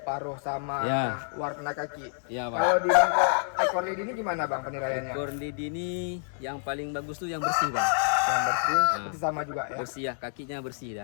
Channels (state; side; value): silent; right; digital silence